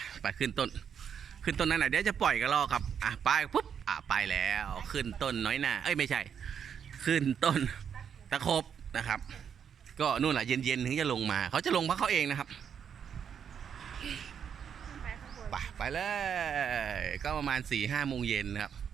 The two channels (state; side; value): quieter; left; 7.8 dB